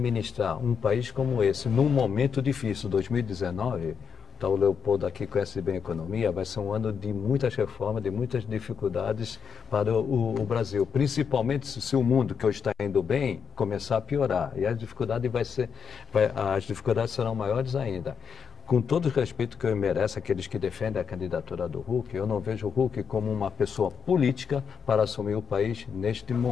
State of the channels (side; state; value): right; quieter; 6.7 dB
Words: um país como esse, num momento difícil, 2019... Então, o Leopoldo aqui conhece bem a economia, vai ser um ano de muitas reformas, de muitas dificuldades para o Brasil, principalmente se o mundo que hoje está indo bem começar a piorar, e as dificuldades serão maiores ainda. com todo o respeito que eu mereço aqueles que defendem a candidatura do Huck, eu não vejo o Huck como uma pessoa política para assumir o país neste